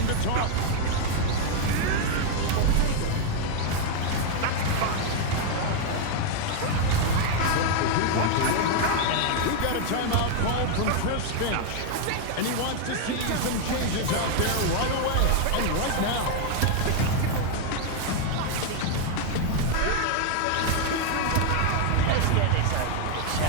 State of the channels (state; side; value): different; both; correlation 0.00